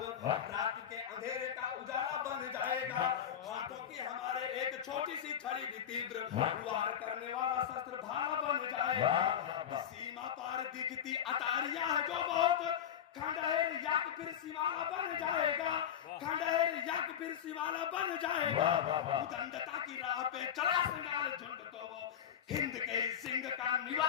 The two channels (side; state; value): right; quieter; 9.4 dB